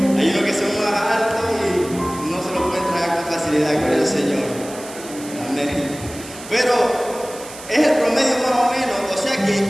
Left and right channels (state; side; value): noise; right; hiss, 15 dB below the sound